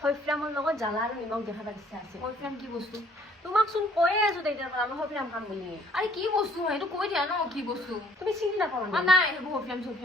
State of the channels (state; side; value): normal; both; correlation 0.60